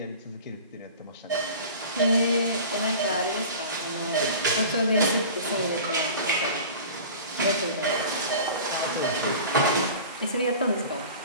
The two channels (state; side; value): inverted; both; correlation -0.39